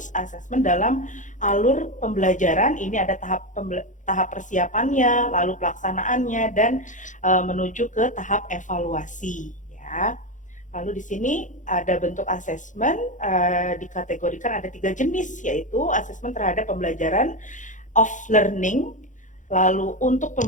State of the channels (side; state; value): right; late; 0.36 ms